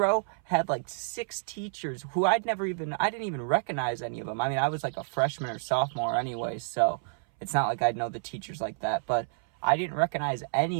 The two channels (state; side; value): silent; left; 57 dB below the other